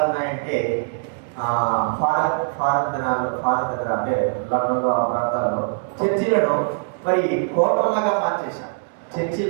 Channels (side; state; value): left; silent; digital silence